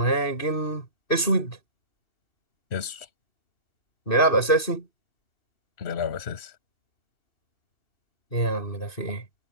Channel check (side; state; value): right; late; 2.6 ms